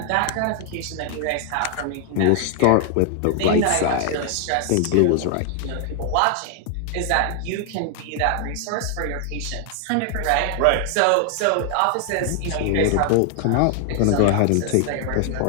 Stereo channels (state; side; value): different; both; correlation 0.00